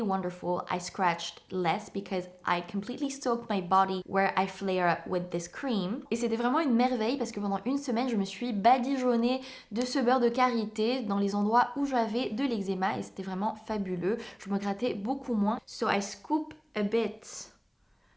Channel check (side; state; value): both; identical; correlation 1.00